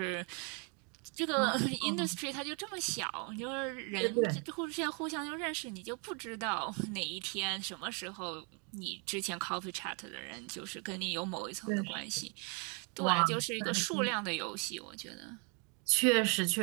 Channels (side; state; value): left; quieter; 36.0 dB